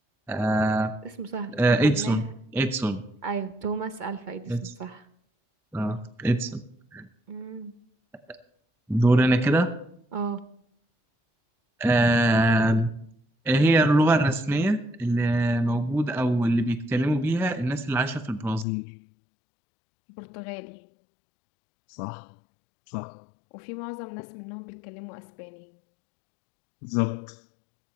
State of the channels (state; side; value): drops out; right; at 18.7 s